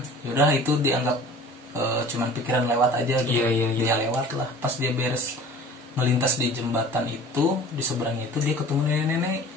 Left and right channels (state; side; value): normal; both; correlation 0.44